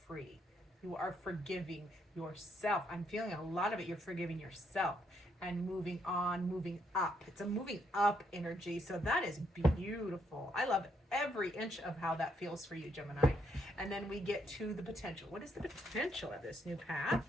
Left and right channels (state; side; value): normal; both; correlation 0.75